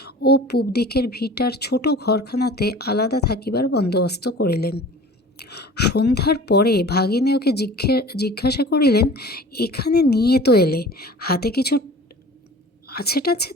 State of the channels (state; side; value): normal; both; correlation 0.42